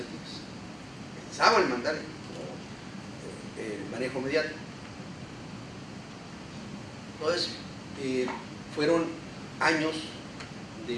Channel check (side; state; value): both; identical; correlation 1.00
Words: Pensaban mandar el manejo mediático. Entonces, fueron años